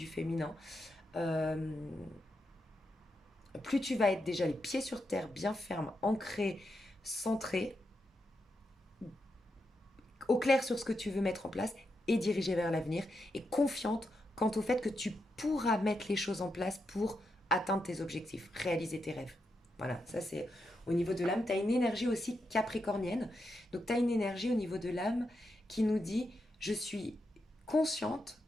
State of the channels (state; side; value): normal; both; correlation 0.84